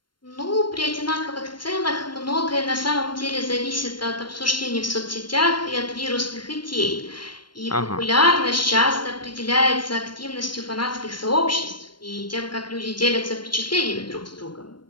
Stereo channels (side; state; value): right; late; 0.72 ms